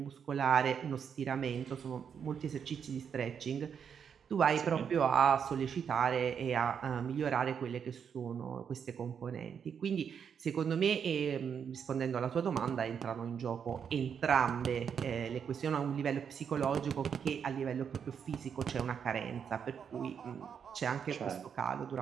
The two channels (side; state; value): left; quieter; 7.4 dB